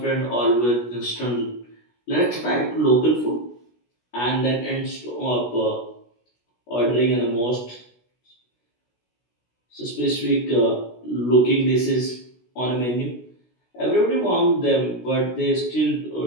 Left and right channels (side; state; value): right; late; 16 ms